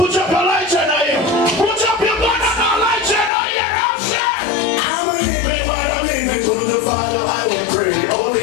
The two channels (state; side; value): drops out; right; at 3.3 s